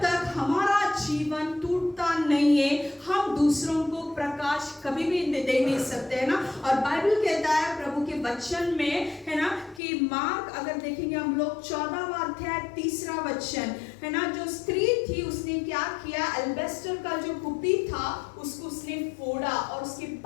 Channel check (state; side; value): drops out; right; at 9.8 s